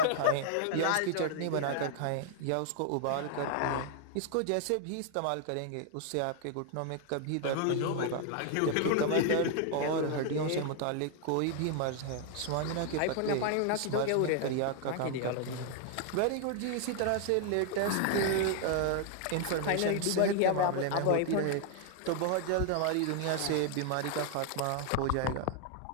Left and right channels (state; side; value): different; both; correlation 0.00